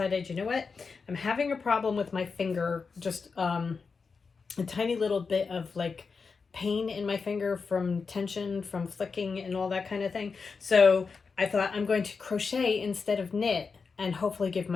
you know what? I'm having a problem with my finger, just a tiny little bit of like pain in my finger from tension, from flicking and all that kind of thing. So I thought I'm going to crochet instead of knit and hopefully give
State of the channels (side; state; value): right; quieter; 5.0 dB